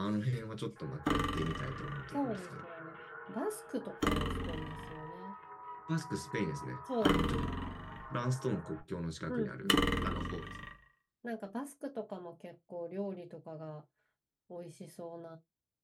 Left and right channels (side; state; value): both; identical; correlation 1.00